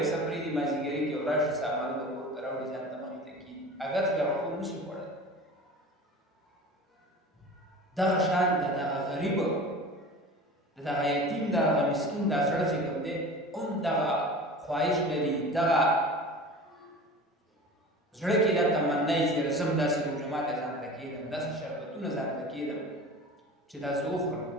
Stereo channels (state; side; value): normal; both; correlation 0.37